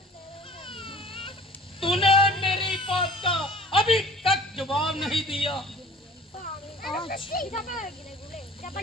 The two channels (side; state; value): both; normal; correlation 0.47